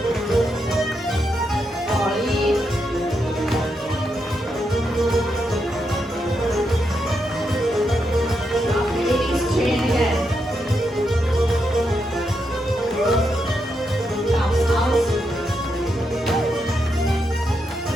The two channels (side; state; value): both; normal; correlation 0.83